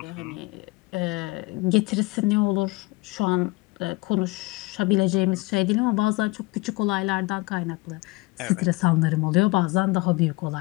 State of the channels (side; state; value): right; quieter; 23.3 dB